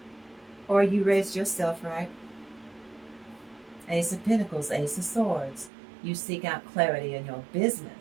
Or you raised yourself right. Ace of Pentacles, Ace of Swords. You seek out clarity in your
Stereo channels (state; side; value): drops out; left; at 5.7 s